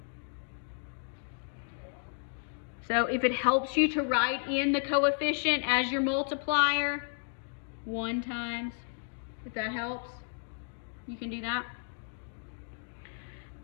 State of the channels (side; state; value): right; silent; digital silence